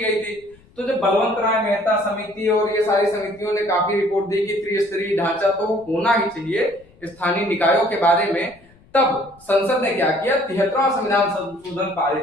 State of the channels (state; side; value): noise; left; rumble, 28 dB below the sound